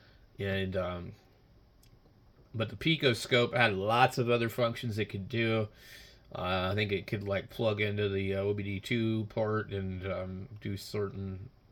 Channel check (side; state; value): both; identical; correlation 1.00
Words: and but the picoscope had lots of other functions it could do. I think it could like plug into the OBD2 port and do certain